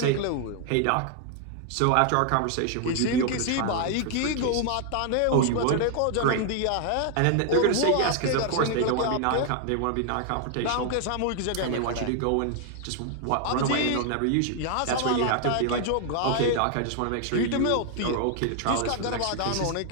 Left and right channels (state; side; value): different; both; correlation 0.00